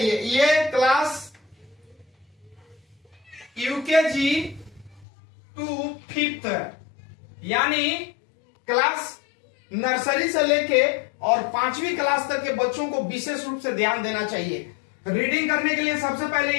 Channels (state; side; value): drops out; right; at 5.1 s